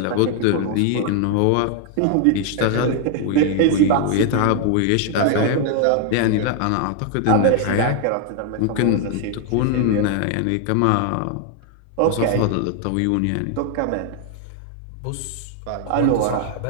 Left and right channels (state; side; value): different; both; correlation 0.00